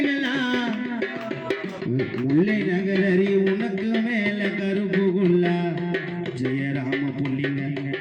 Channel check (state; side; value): identical; both; correlation 1.00